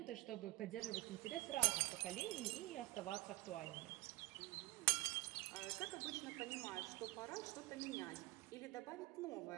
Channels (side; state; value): left; quieter; 20.4 dB